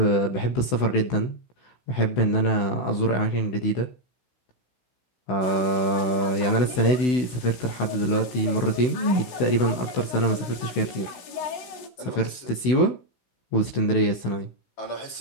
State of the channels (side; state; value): right; late; 16 ms